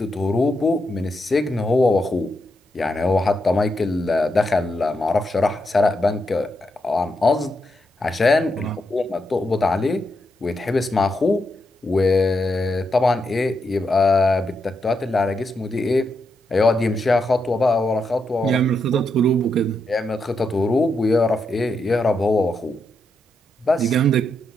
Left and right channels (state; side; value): normal; both; correlation 0.83